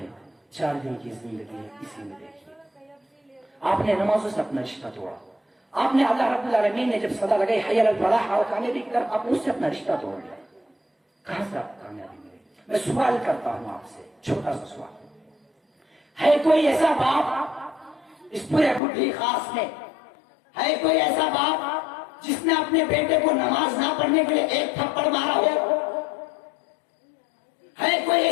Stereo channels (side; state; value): right; drops out; at 18.8 s